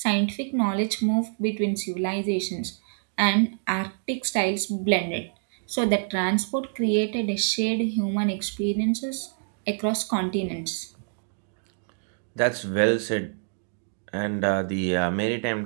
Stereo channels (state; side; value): silent; left; digital silence